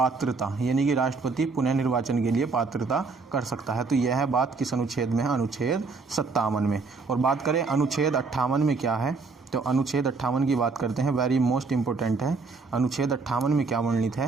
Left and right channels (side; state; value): left; quieter; 4.3 dB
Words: यानी कि राष्ट्रपति पुनः निर्वाचन के लिए पात्रता कर सकता है। तो यह बात किस अनुच्छेद में है? अनुच्छेद 57 में। और बात करें अनुच्छेद 58 में क्या है, तो अनुच्छेद 58 की बात करते हैं, वेरी मोस्ट इम्पोर्टेंट है। अनुच्छेद 58 में क्या वर्णित